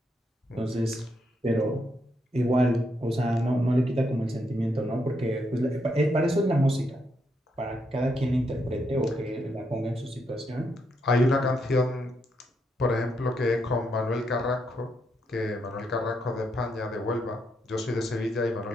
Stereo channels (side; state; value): both; normal; correlation 0.79